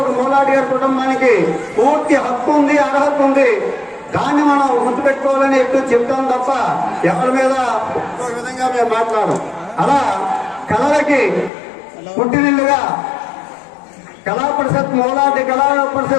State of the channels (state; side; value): drops out; right; at 11.5 s